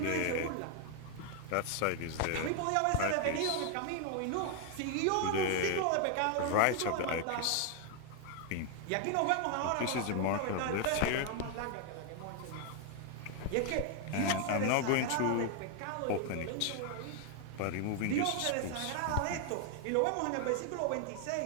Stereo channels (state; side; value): different; both; correlation 0.00